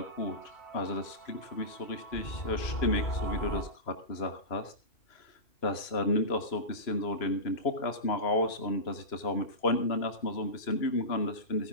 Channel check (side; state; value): right; late; 2.9 ms